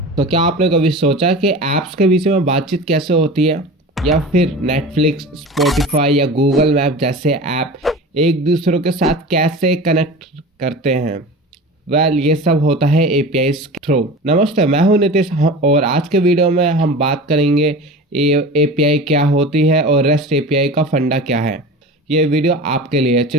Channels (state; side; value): normal; both; correlation 0.34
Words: तो क्या आपने कभी सोचा कि ऐप्स के बीच में बातचीत कैसे होती है, या फिर नेटफ्लिक्स, स्पॉटिफाई या गूगल मैप जैसे ऐप एक दूसरे के साथ कैसे कनेक्ट करते हैं? ये सब होता है एपीआई के थ्रू। नमस्ते, मैं हूं नितिश और आज के वीडियो में हम बात करेंगे एपीआई क्या होती है और रेस्ट एपीआई का फंडा क्या है। ये वीडियो आपके लिए।